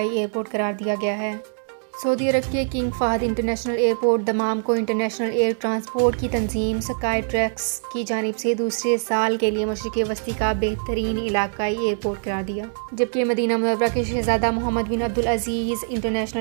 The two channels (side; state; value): left; silent; digital silence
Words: ایئرپورٹ قرار دیا گیا ہے۔ سعودی عرب کے King Fahd International Airport Dammam کو انٹرنیشنل ایئر ٹرانسپورٹ کی تنظیم اسکائی ٹریکس کی جانب سے دوسرے سال کے لیے مشرق وسطی کا بہترین علاقائی ایئرپورٹ قرار دیا، جبکہ مدینہ منورہ کے شہزادہ محمد بن عبدالعزیز